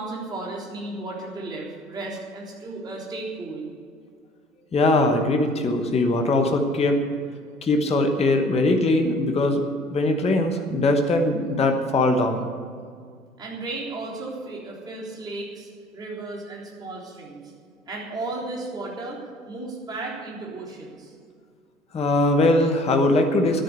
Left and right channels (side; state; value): both; normal; correlation 0.54